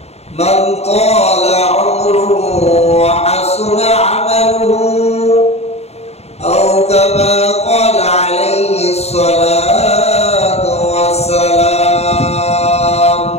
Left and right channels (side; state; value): right; late; 0.31 ms